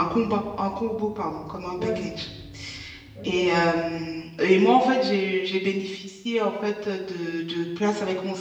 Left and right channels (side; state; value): both; identical; correlation 1.00